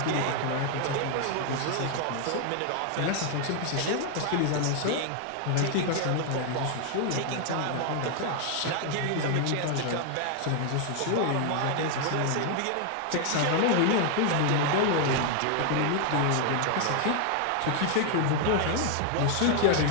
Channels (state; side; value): different; both; correlation 0.00